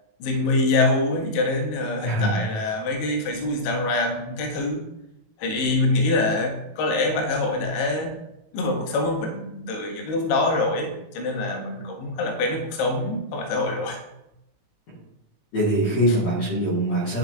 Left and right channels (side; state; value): right; late; 19 ms